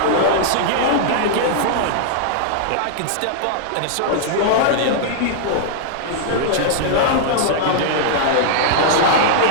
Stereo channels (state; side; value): different; both; correlation -0.01